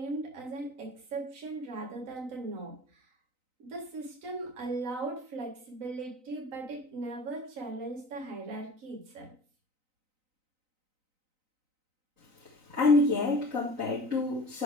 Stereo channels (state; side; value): late; left; 3.9 ms